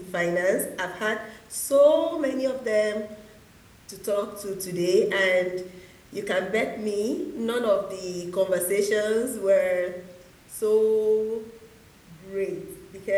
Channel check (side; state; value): both; identical; correlation 1.00